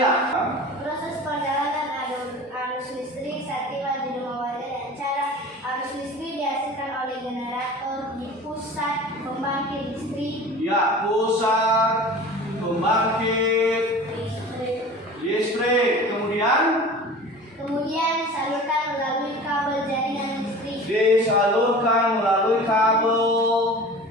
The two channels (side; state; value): both; normal; correlation 0.39